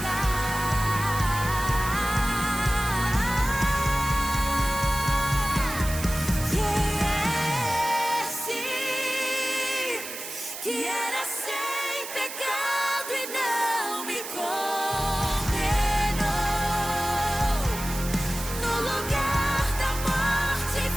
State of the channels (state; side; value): noise; right; hiss, 9 dB below the sound